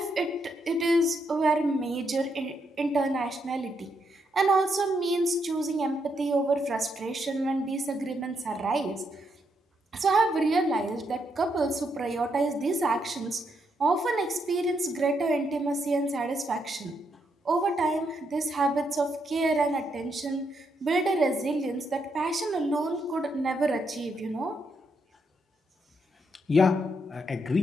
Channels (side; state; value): both; normal; correlation 0.78